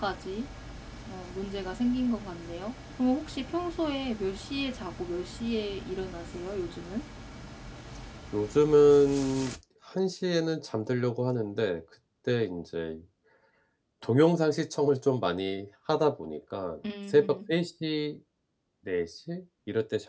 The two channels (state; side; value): identical; both; correlation 1.00